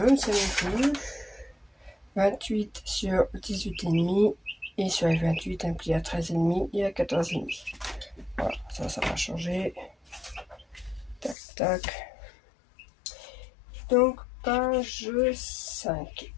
ne sais même plus, 28 sur 18,5 et sur les 28 un pli à 13,5 et à 14,5. Voilà, ça va changer. Tac, tac. Donc, page 5.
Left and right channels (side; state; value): right; drops out; at 11.4 s